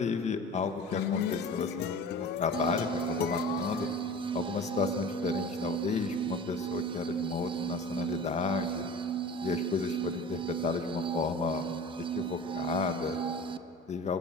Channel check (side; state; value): both; normal; correlation 0.37